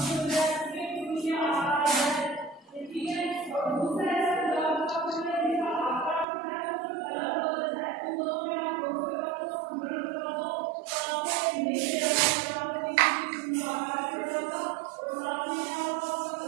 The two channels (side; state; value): left; drops out; at 6.2 s